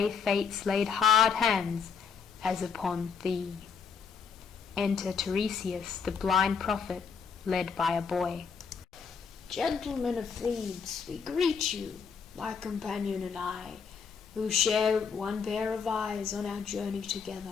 fates laid hard hands, as upon thee. Enter Tiresias, the blind prophet, led by a boy. Gentlemen of Thebes, we greet you, my companion and I, who share one pair of eyes on our journey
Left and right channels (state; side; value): quieter; right; 6.0 dB